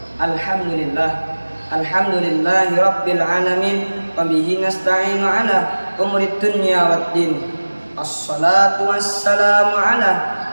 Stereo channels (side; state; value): both; inverted; correlation -1.00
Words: Alhamdulillahi rabbil alamin, wa bihi nasta'inu ala umurid dunya waddin. Assalatu wassalamu ala